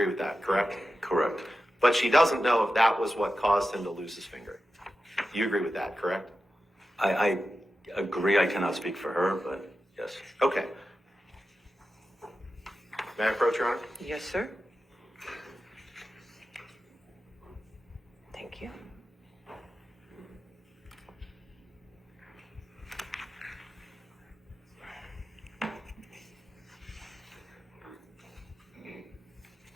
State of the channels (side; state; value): both; normal; correlation 0.92